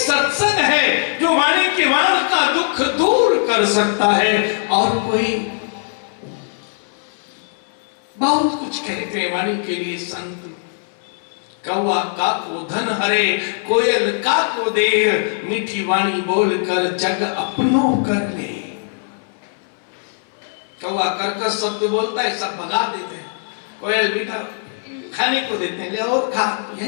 है जो वाणी के वाण का दुख दूर कर सकता है। और कोई बहुत कुछ कहते हैं वाणी के लिए संत, कौवा का को धन हरे, कोयल का को देर, मीठी वाणी बोलकर जग अपनो कर ले। कौवा कर्कश शब्द बोलता है, सब भगा देते हैं। कोयल मीठा खाने को देते हैं, ले और खा,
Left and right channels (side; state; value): right; silent; 61 dB below the other